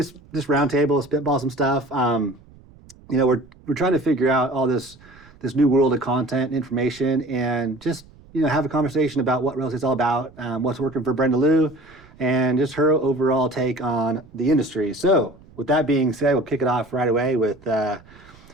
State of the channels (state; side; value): noise; right; rumble, 24 dB below the sound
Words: roundtable, spitball some stuff. We're trying to figure out all this new world of content and information, and just have a conversation about what real estate's all about, what's working for Brenda Lou, and just her overall take on the industry. So with that being said, we'll kick it off right away with